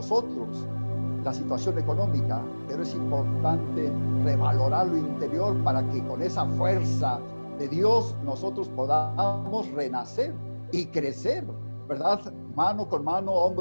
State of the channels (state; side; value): inverted; both; correlation -1.00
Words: la situación económica, pero es importante revalorar lo interior para que con esa fuerza de Dios nosotros podamos renacer y crecer, ¿verdad? Mano con mano,